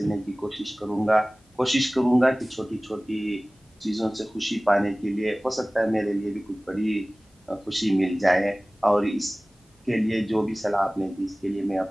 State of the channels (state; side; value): normal; both; correlation 0.98